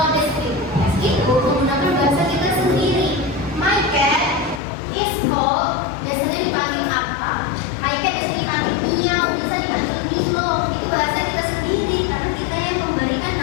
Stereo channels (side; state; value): right; drops out; at 4.6 s